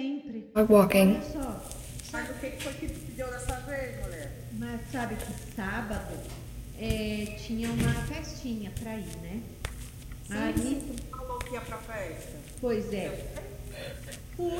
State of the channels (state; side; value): identical; both; correlation 1.00